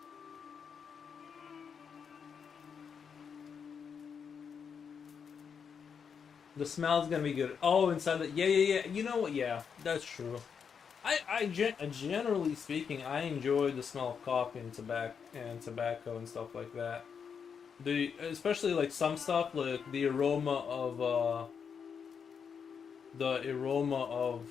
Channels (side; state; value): right; quieter; 6.7 dB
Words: The smell's gonna be good. Oh, inside the yeah. You know what? Yeah, that's true. Generally speaking, I enjoy the smell of coffee and tobacco and stuff like that. Especially like some stuff like the aroma of